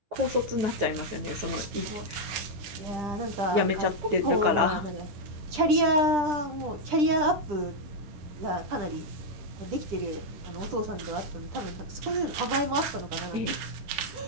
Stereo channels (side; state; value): left; late; 10 ms